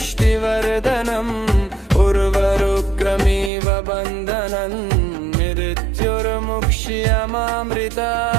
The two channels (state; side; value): drops out; left; at 3.5 s